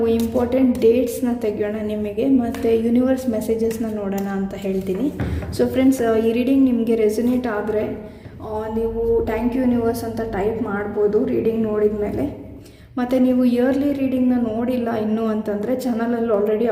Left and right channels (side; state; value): both; identical; correlation 1.00